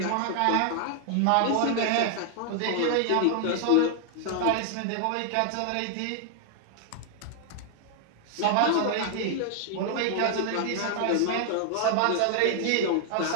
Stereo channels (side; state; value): both; different; correlation 0.00